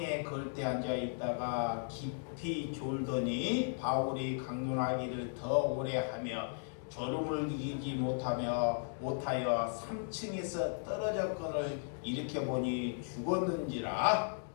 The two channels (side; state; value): right; silent; digital silence